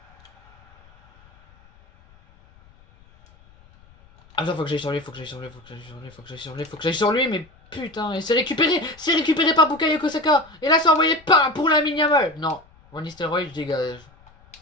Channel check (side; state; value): left; noise; rumble, 28 dB below the sound